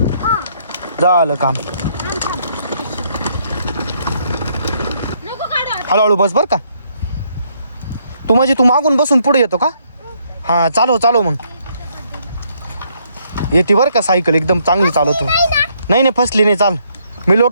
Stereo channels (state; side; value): inverted; both; correlation -0.71